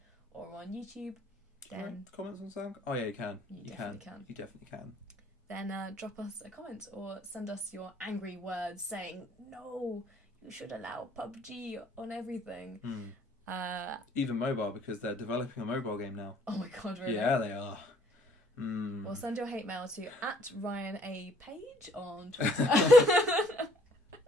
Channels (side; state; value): both; normal; correlation 0.61